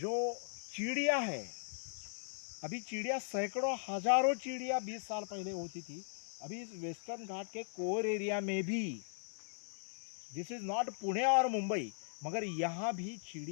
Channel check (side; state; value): right; silent; 52 dB below the other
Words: चिड़िया है, अभी चिड़िया सैकड़ों हजारों चिड़िया 20 साल पहले होती थी। अभी इस वेस्टर्न घाट के कोर एरिया में भी, दिस इज नॉट पुणे और मुंबई, मगर यहाँ भी